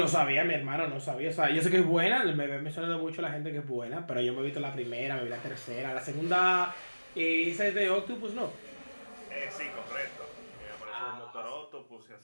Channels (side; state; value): both; inverted; correlation -1.00